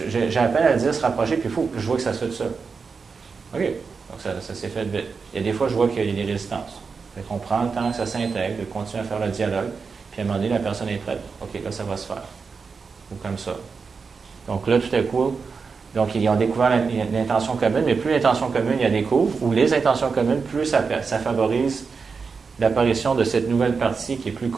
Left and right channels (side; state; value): left; quieter; 5.1 dB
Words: à peine à dire se rapprocher, puis il faut que je vois que ça se fait tout seul. OK, donc ça s'est fait vite. Il y a des fois, je vois qu'il y a des résistances. Fait qu'on prend le temps que ça s'intègre, de continuer à faire le dialogue, puis à un moment donné, la personne est prête. OK, là, ça va se faire. Ou comme ça. Donc là, tout à coup, donc ils ont découvert l'intention commune, mais plus l'intention commune, ils la découvrent, ou les intentions communes, plus ça favorise l'apparition de cette nouvelle partie qui est plus